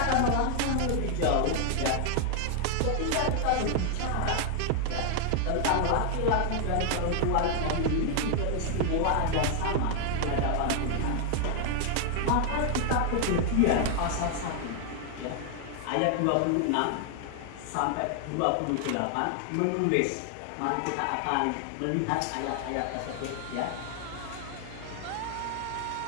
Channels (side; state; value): both; different; correlation 0.00